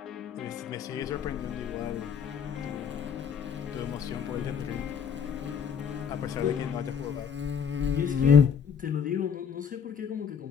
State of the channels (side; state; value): right; quieter; 7.2 dB